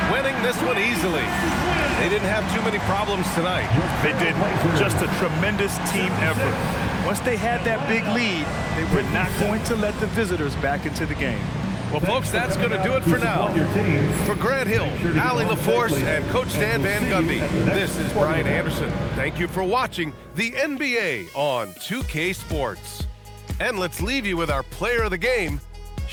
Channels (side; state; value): both; identical; correlation 1.00